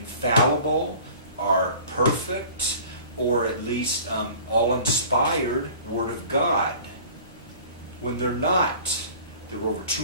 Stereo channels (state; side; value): inverted; both; correlation -0.45